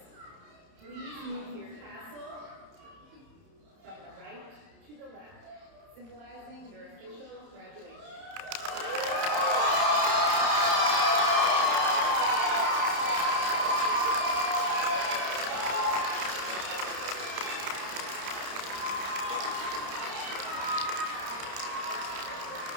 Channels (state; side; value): late; left; 30 ms